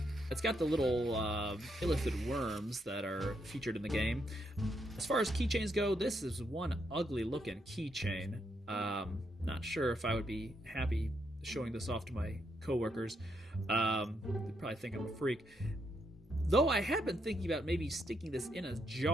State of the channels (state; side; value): normal; both; correlation 0.78